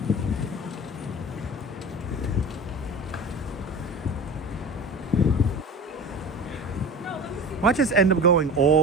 Why just end up going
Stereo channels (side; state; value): both; normal; correlation 0.33